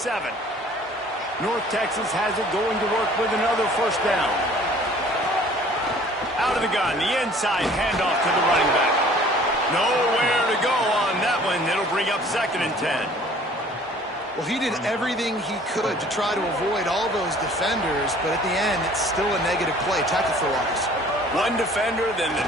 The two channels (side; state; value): both; normal; correlation 0.52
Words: North Texas has it going to work with another first down. Out of the gun, the inside handoff to the running back. Nowhere to go on that one. It'll bring up 2nd and 10. Well, he did everything he could to try to avoid all those defenders, but at the end, it's still a negative play. Tackle for loss. One defender, then